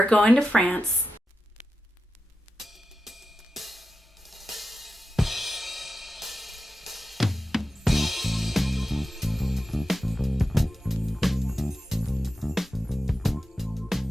going to France.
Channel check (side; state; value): both; normal; correlation 0.90